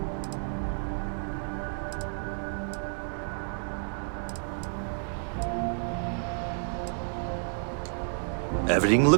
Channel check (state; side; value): silent; left; 58 dB below the other